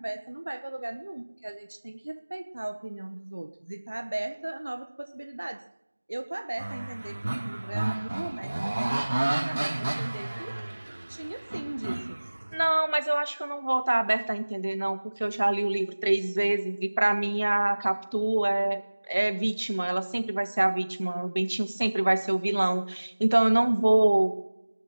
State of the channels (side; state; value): both; inverted; correlation -1.00